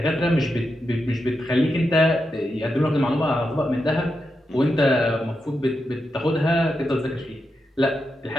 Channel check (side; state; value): both; normal; correlation 0.87